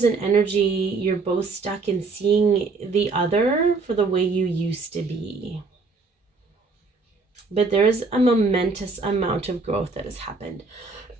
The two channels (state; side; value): quieter; left; 4.1 dB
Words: an energy, you're both stuck in seeing the other for the way you used to be. But there's a momentous amount of growth that has happened.